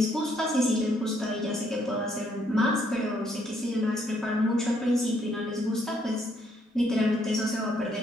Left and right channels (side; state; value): both; normal; correlation 0.70